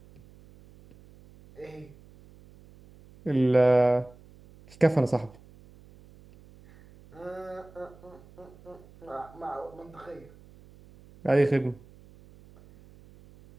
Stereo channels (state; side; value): noise; right; hum, 24 dB below the sound